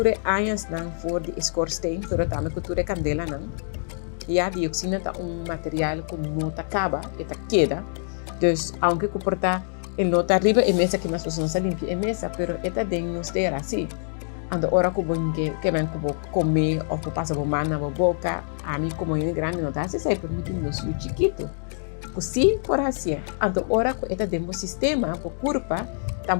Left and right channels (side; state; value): right; silent; digital silence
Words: anos não for de scorsteen, pero também com ture candela não. E a dioxina tá material que não tá acaba, eta queda. Dus aunque comporta el nota arriba e mesa que mais pessoas não limpia e mesa, pero eta ding nos terá assim. Ando ora que bom que vem que comer ou que passa por mão na boca, a mim como é grande não dá se sai permitindo nos chiquito. Assim por assim. Ando ora que eta demo sistema por curva,